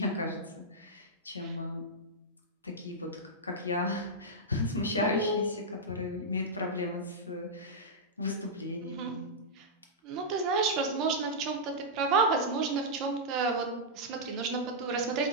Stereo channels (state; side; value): normal; both; correlation -0.09